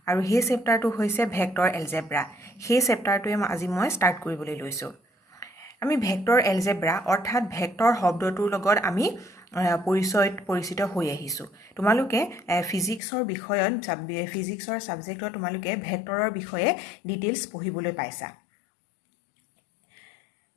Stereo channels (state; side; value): drops out; right; at 13.0 s